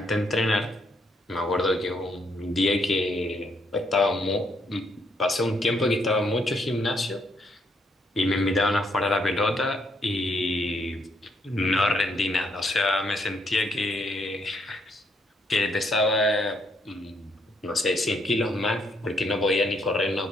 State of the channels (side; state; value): both; normal; correlation 0.73